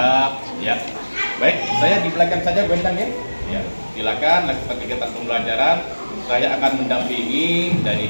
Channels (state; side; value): inverted; both; correlation -1.00